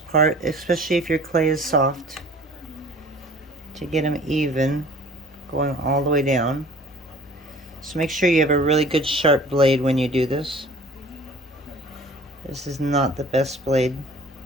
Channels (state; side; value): normal; both; correlation 0.48